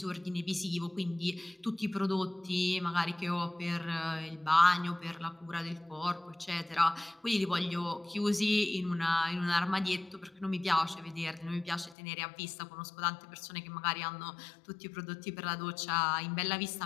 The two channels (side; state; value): right; drops out; at 12.0 s